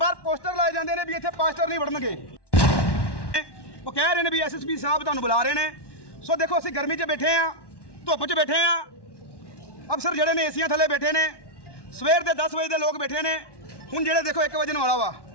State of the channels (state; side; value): late; right; 1.1 ms